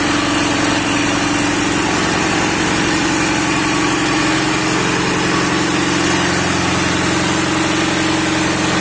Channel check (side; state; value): both; identical; correlation 1.00